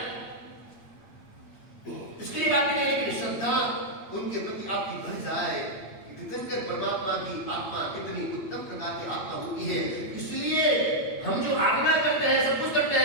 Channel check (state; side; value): late; right; 8.6 ms